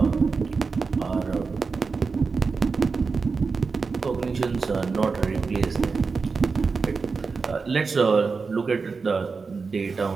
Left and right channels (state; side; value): quieter; left; 4.7 dB